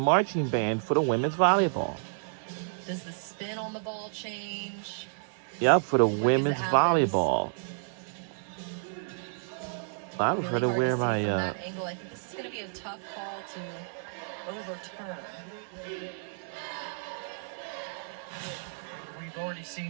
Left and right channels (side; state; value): left; silent; digital silence